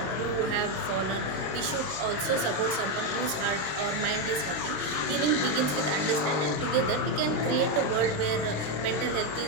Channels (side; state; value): left; late; 27 ms